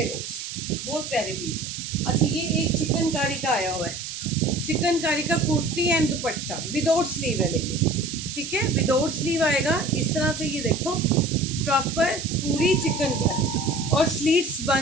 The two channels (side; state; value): right; noise; hiss, 8 dB below the sound